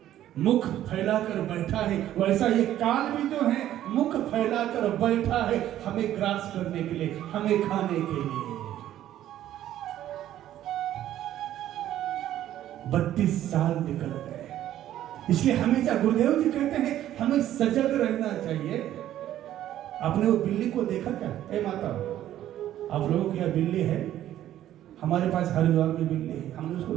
मुख फैलाकर बैठा है, वैसा ये काल भी जो है मुख फैलाकर बैठा है हमें ग्रास करने के लिए, हमें खाने के लिए। 32 साल निकल गए, इसलिए हमेशा गुरुदेव जी कहते हैं हमें सजग रहना चाहिए। आपने वो बिल्ली को देखा क्या? ए माता, आप लोगों की यहाँ बिल्ली है, हमारे पास हरिद्वार में बिल्ली है, हमने उसको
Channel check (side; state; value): left; quieter; 12.4 dB